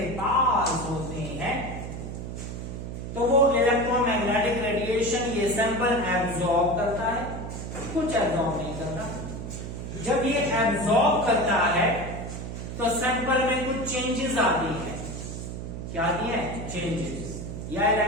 पास होते हैं तो वो इलेक्ट्रोमैग्नेटिक रेडिएशन ये सैंपल एब्जॉर्ब करता है, कुछ एब्जॉर्ब नहीं करता। जब ये एब्जॉर्ब करता है तो सैंपल में कुछ चेंजेस आती है। क्या आती है? चेंजेस। या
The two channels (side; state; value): right; noise; hum, 7 dB below the sound